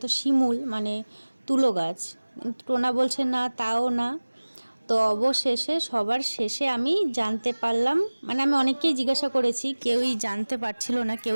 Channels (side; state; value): both; inverted; correlation -1.00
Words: শিমুল মানে তুলো গাছ। টোনা বলছে না তাও না। তো অবশেষে সবার শেষে আমি জানতে পারলাম, মানে আমি অনেককেই জিজ্ঞাসা করেছি, কেউই জানতে পারছিল না,